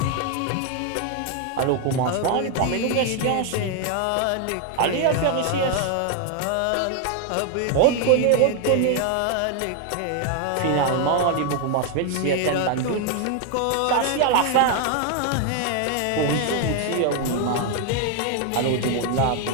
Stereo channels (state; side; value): different; both; correlation 0.01